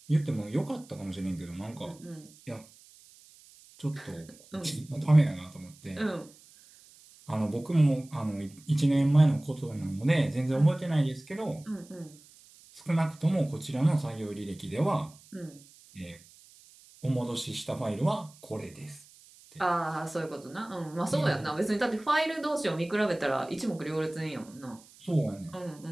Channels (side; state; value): right; noise; hiss, 24 dB below the sound